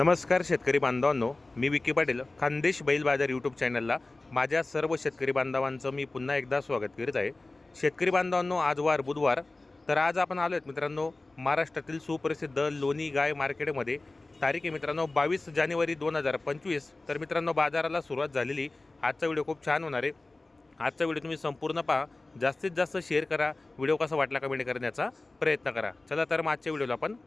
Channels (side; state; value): right; quieter; 3.1 dB